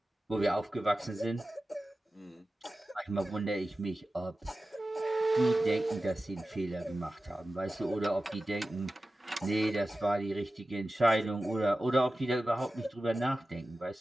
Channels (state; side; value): normal; both; correlation 0.95